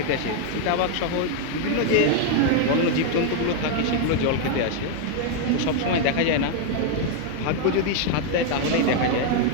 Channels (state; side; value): different; both; correlation 0.00